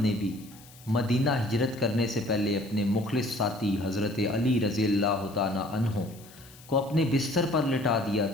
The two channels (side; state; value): left; noise; hiss, 22 dB below the sound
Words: بھی مدینہ ہجرت کرنے سے پہلے اپنے مخلص ساتھی حضرت علی رضی اللہ تعالیٰ عنہ کو اپنے بستر پر لٹا دیا